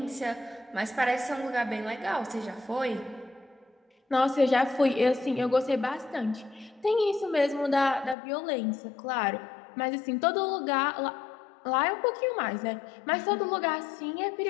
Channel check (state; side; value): drops out; right; at 8.2 s